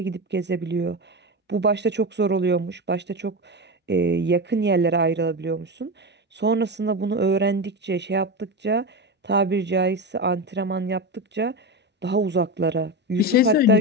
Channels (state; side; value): normal; both; correlation 0.19